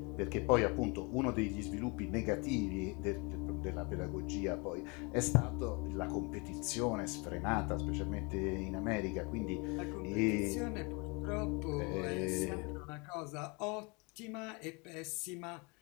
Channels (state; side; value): quieter; right; 29.6 dB